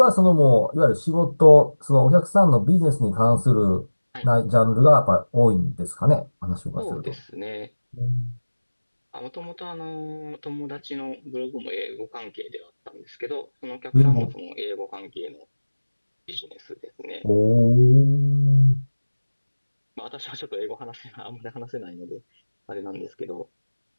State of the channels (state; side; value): inverted; both; correlation -1.00